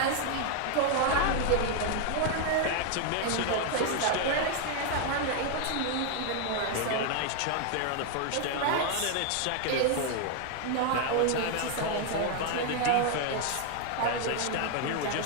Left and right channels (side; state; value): both; different; correlation 0.01